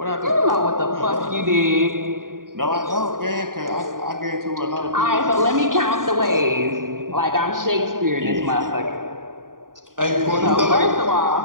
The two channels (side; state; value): left; late; 0.90 ms